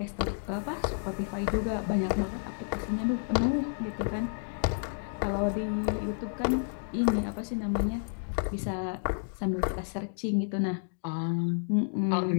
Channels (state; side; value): silent; right; digital silence